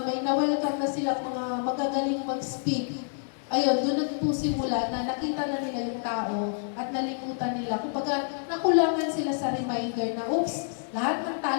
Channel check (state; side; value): silent; right; 59 dB below the other